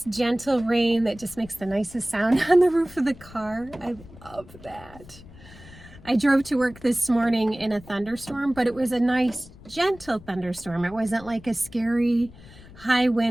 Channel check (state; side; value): noise; left; rumble, 20 dB below the sound